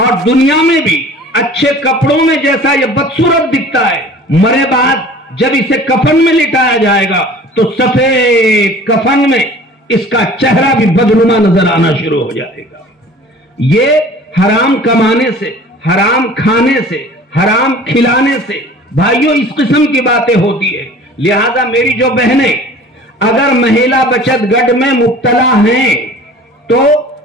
دنیا میں بھی اچھے کپڑوں میں جیسا یہ بدصورت دکھتا ہے، مرے بعد جب اسے کفن میں لٹایا جائے گا تو سفید کفن میں اس کا چہرہ بھی بدنما نظر آنا شروع ہو جائے گا۔ یہ حرام کمانے سے، حرام کھانے سے، حرام کھلانے سے بھائیوں اس قسم کی باتیں ہوتی ہے۔ لہذا میری جو بہنیں اگر مہیلا بچت گٹ میں مبتلا ہیں تو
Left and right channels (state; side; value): normal; both; correlation 0.45